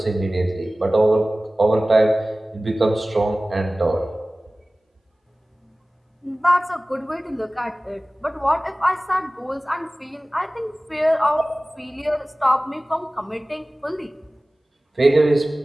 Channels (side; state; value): both; normal; correlation 0.98